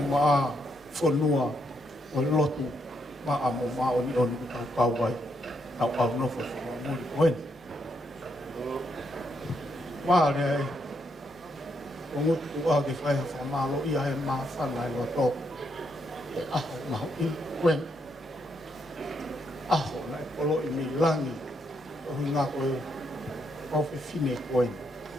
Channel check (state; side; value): normal; both; correlation 0.77